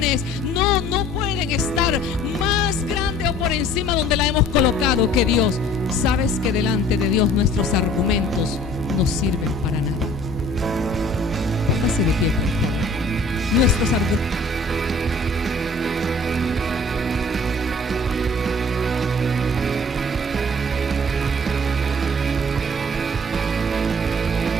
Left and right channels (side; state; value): both; normal; correlation 0.52